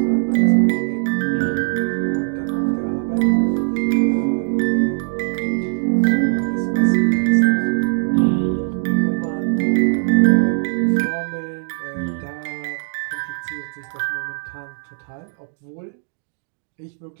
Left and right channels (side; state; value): left; silent; digital silence